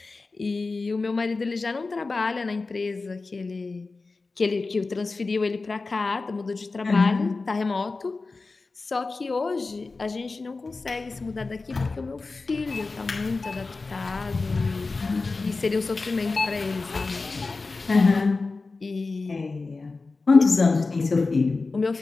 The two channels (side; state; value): right; quieter; 3.8 dB